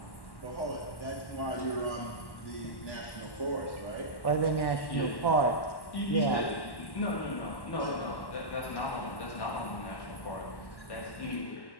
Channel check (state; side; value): late; right; 1.1 ms